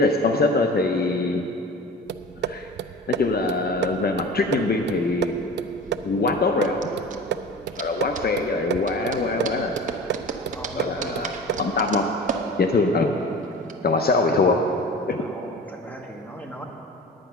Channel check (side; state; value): both; normal; correlation 0.36